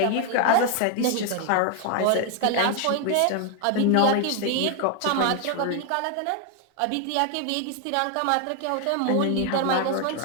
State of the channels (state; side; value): different; both; correlation 0.01